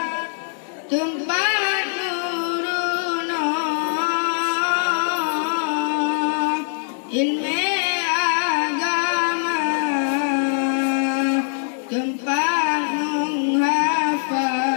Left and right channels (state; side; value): silent; right; 64 dB below the other